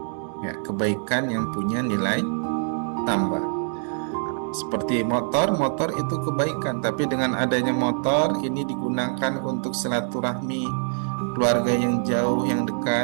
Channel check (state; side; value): silent; left; digital silence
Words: ya, kebaikan yang punya nilai tambah. Seperti motor itu kebaikan, tapi dengan adanya motor ini digunakan untuk silaturahmi keluarga yang jauh, yang